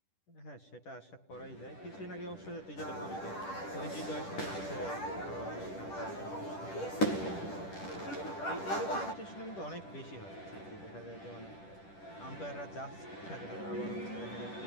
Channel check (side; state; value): right; late; 10 ms